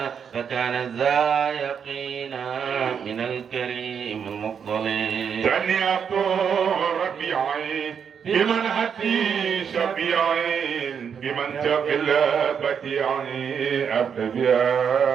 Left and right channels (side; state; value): left; quieter; 7.2 dB